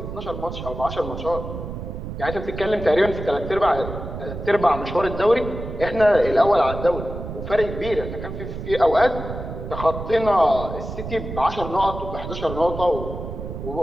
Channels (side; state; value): right; noise; rumble, 8 dB below the sound